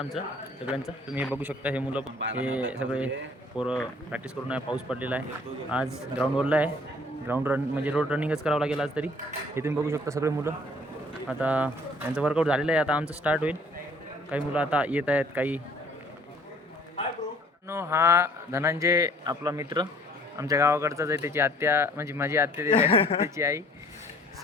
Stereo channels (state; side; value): normal; both; correlation 0.56